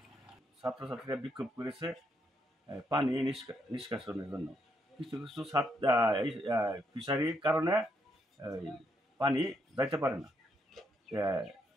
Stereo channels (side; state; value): both; normal; correlation 0.76